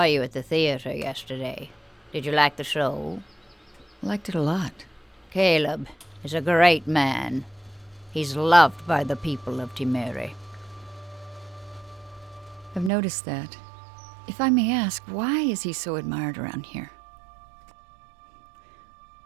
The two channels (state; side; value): drops out; left; at 12.9 s